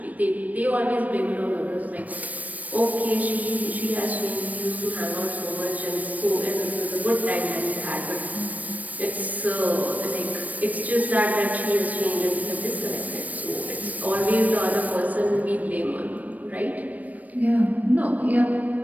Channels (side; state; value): left; late; 0.074 ms